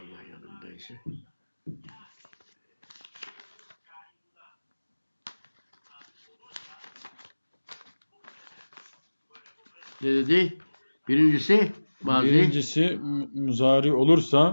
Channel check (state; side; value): inverted; both; correlation -1.00